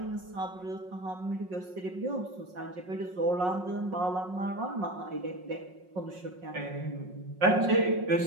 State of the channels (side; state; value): left; late; 5.5 ms